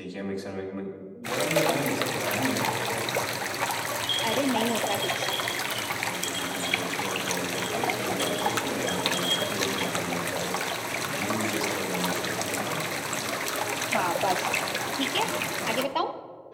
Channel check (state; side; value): identical; both; correlation 1.00